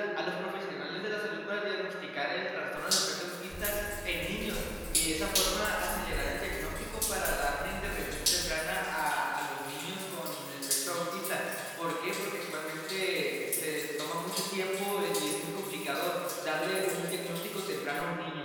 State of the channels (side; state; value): both; identical; correlation 1.00